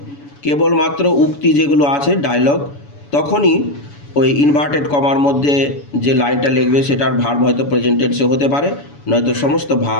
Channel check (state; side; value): late; right; 7.0 ms